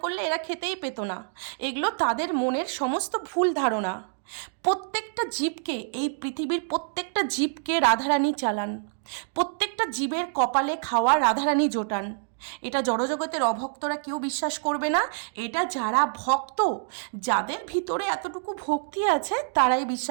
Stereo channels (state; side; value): silent; left; digital silence